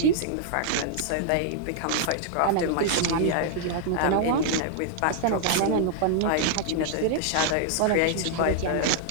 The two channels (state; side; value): different; both; correlation -0.01